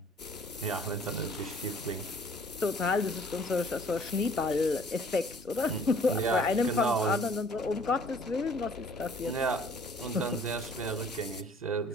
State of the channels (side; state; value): both; normal; correlation 0.55